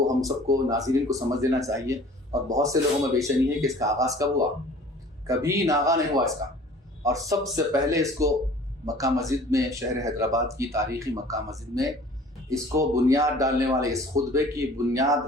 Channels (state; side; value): normal; both; correlation 0.48